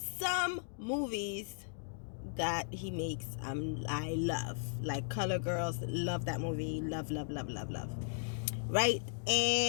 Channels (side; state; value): right; silent; digital silence